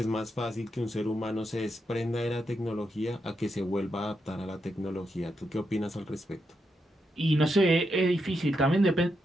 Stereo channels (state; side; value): normal; both; correlation 0.83